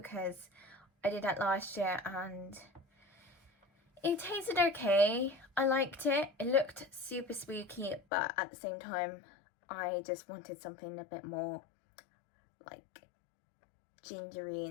I did that last year and it tasted okay. I liked it. It looked super spooky, but at the same time I just wanted something a bit more gingery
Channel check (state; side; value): drops out; right; at 8.0 s